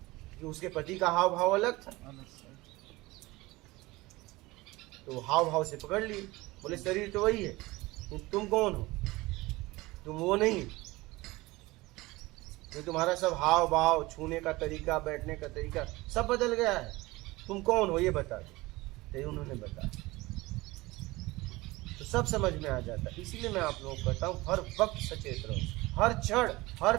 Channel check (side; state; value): left; quieter; 20.8 dB